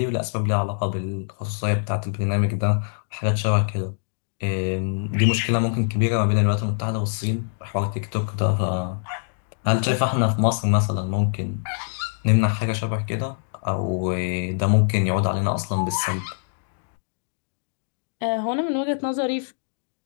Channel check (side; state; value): right; silent; digital silence